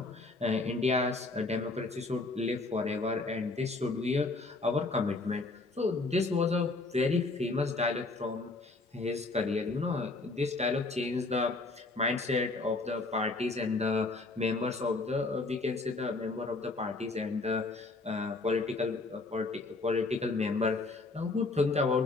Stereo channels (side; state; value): right; quieter; 3.4 dB